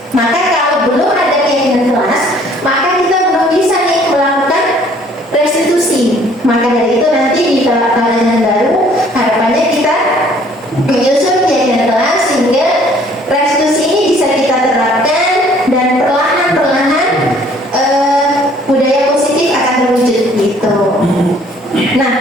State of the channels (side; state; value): both; normal; correlation 0.58